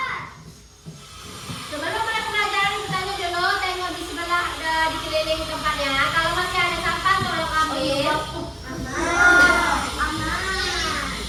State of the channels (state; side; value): identical; both; correlation 1.00